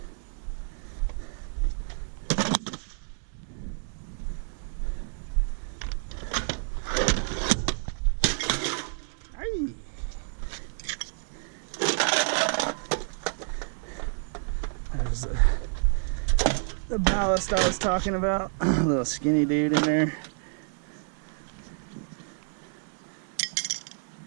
There's the ballast I was talking about. Little skinny dude in there.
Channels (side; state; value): left; silent; digital silence